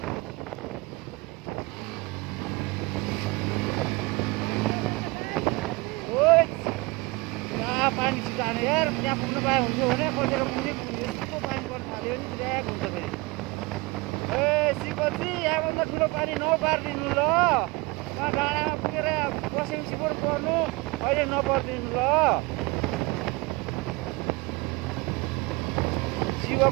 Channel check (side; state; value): left; quieter; 24.6 dB